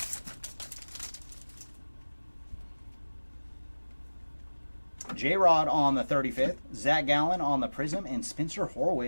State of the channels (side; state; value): both; inverted; correlation -1.00